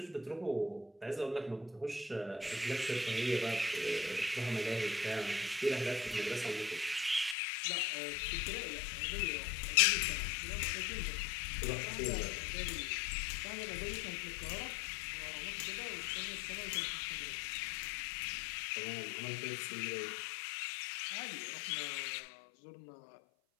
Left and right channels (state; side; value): drops out; right; at 7.4 s